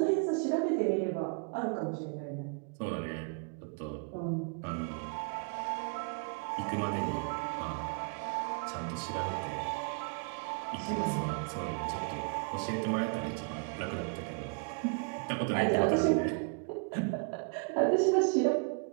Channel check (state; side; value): quieter; left; 37.5 dB